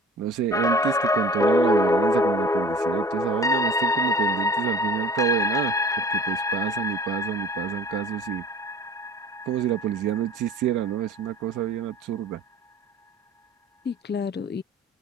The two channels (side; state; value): both; normal; correlation 0.44